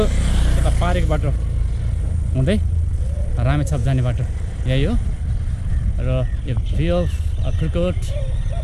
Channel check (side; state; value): both; identical; correlation 1.00